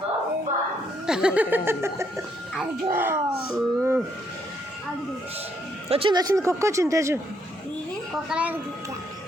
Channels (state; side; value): normal; both; correlation 0.73